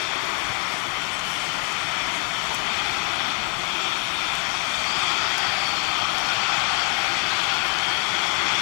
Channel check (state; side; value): quieter; right; 32.1 dB